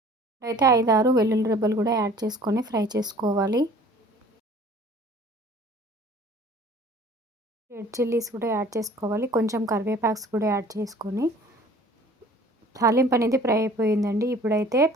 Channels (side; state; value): both; normal; correlation 0.50